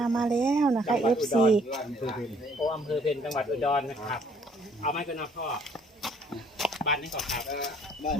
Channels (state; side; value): normal; both; correlation 0.62